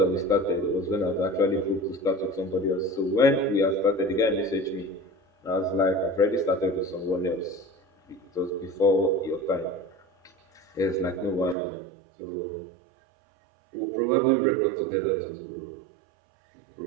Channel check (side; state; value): left; drops out; at 11.6 s